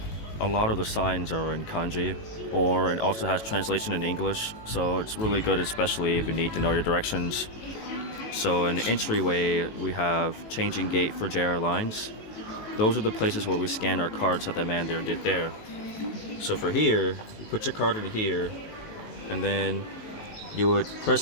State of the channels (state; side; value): late; right; 19 ms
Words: a lot of the signs are in kanji, or it also has translation in English, so it's really good, especially if you need to know your directions. So in the entryway, we have changing gate for JR lines. Those are the places where we scan our cards that the man there did there. So for here, you put your card in here, and then you would